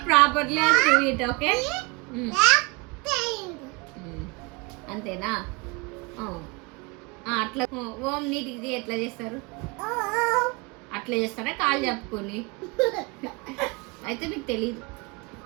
properly and do it okay 8, 9. అంతేనా అట్లా ఓం నీటికి ఎట్లా చేస్తారు అట్లా చేస్తారా కాలు చెప్పుకొని అయితే మీకు తెలీదు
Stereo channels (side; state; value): left; quieter; 27.8 dB